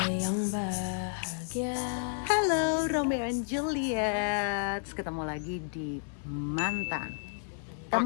yang bahagia. Halo Romeo and Juliet, ketemu lagi di Mantan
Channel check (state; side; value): silent; right; 57 dB below the other